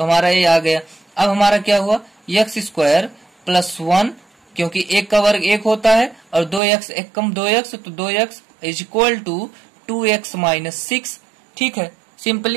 हमारा ये आ गया। अब हमारा क्या हुआ, x स्क्वायर प्लस 1, क्योंकि 1 का वर्ग 1 होता है और 2x 1 कम 2x, तो 2x is equal to 2x minus 6, ठीक है।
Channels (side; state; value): left; drops out; at 6.6 s